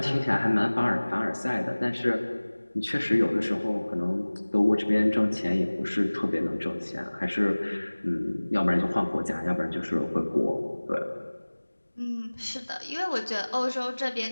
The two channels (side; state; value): both; inverted; correlation -1.00